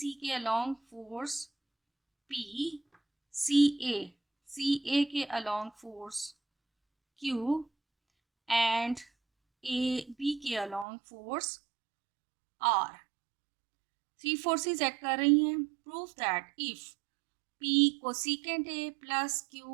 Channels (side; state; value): left; drops out; at 10.9 s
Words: के along force P, C A के along force Q and A B के along force R. 3 forces act कर रही हैं। Proof that if P cosecant A plus